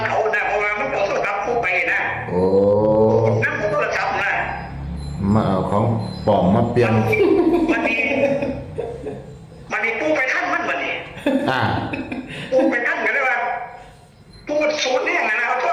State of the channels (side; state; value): both; identical; correlation 1.00